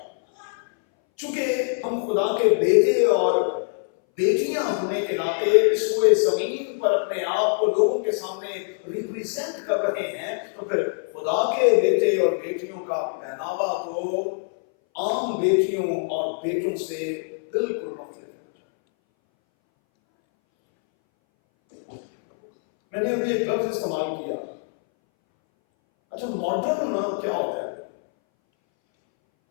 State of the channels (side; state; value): right; silent; 61 dB below the other